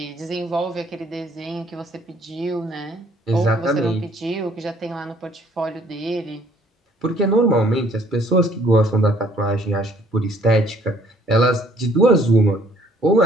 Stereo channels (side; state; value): both; normal; correlation 0.60